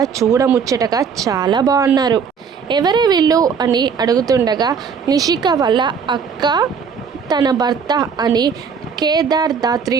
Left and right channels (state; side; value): quieter; left; 6.3 dB